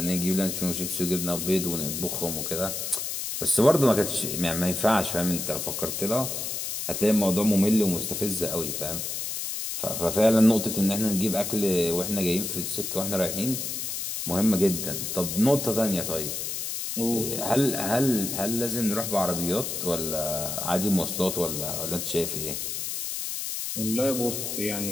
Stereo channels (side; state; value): left; noise; hiss, 4 dB below the sound